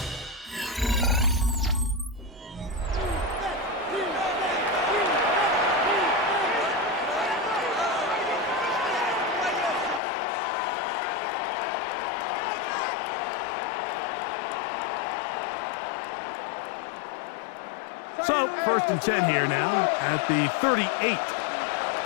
So, 1st and 10 here now at the 38.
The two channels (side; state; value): right; drops out; at 10.0 s